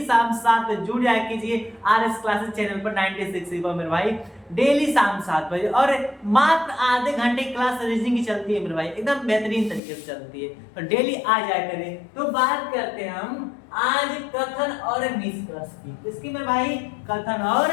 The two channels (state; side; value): drops out; right; at 9.8 s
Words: शाम 7 बजे जुड़ जाया कीजिए RS क्लासेस चैनल पर 96 पर मेरे भाई, डेली शाम 7 बजे। और मात्र आधे घंटे क्लास रीजनिंग की चलती है मेरे भाई, एकदम बेहतरीन तरीके से चलती है, तो डेली आ जाया करें। तो बात करते हैं हम आज कथन और निष्कर्ष की। इसकी मेरे भाई कथन और